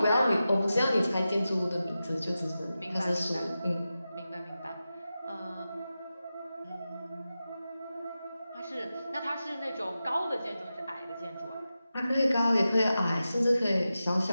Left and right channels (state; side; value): inverted; both; correlation -0.92